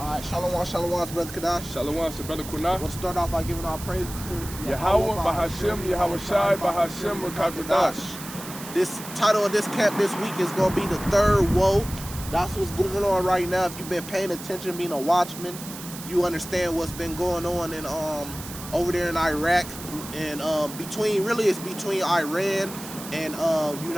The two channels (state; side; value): noise; right; hiss, 12 dB below the sound